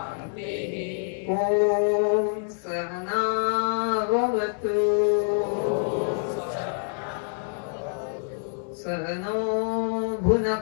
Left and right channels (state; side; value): silent; right; digital silence